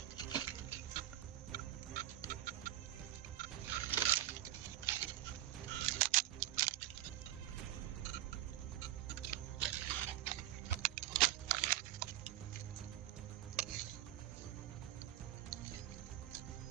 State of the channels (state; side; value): quieter; left; 13.7 dB